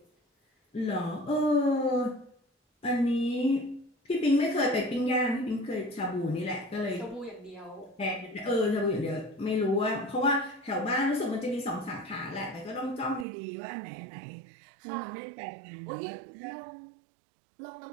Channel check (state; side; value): drops out; left; at 13.2 s